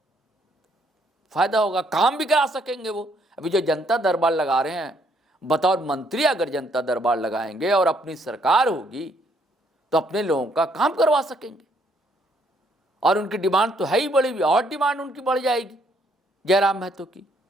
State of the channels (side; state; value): both; normal; correlation 0.69